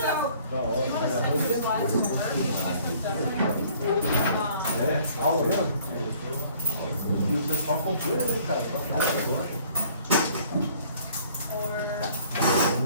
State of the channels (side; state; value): both; inverted; correlation -0.56